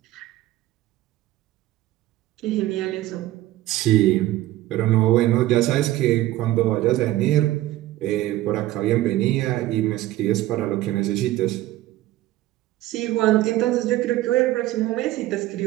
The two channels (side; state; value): left; quieter; 15.6 dB